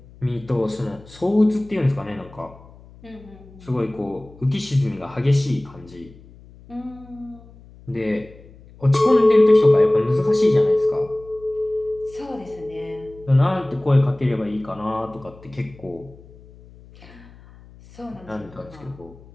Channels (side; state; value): left; noise; hum, 22 dB below the sound